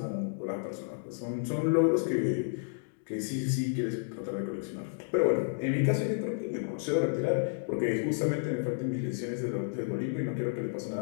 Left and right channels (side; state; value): right; silent; digital silence